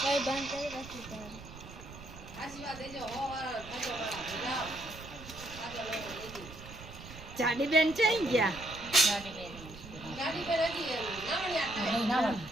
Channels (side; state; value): right; noise; rumble, 15 dB below the sound